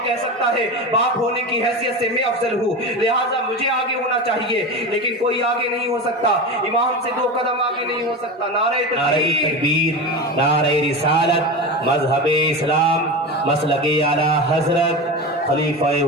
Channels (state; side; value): normal; both; correlation 0.24